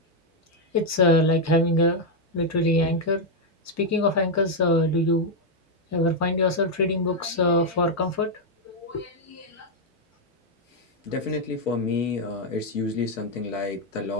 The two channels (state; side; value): normal; both; correlation 0.00